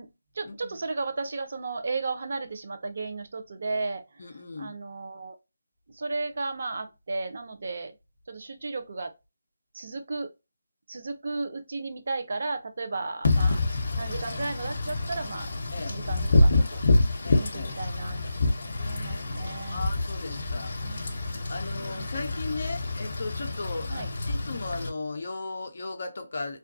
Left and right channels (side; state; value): both; inverted; correlation -0.89